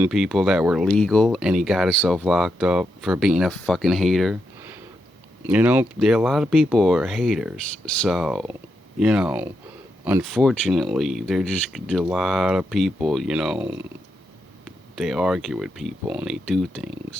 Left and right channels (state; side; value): normal; both; correlation 0.83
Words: people that were legal, and he got himself locked up for being a fucking hater. There are a lot of people who are haters. So, unfortunately, there just a lot of people, they argue with people and they do